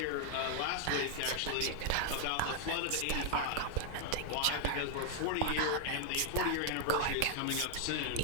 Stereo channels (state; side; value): different; both; correlation 0.00